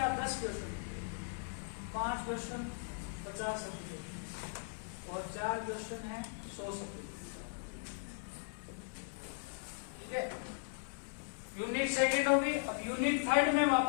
10 क्वेश्चन, 5 क्वेश्चन 50 शब्द के, और 4 क्वेश्चन है 100 शब्द के, ठीक है। यूनिट सेकंड होगी। अब यूनिट थर्ड में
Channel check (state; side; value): silent; right; 52 dB below the other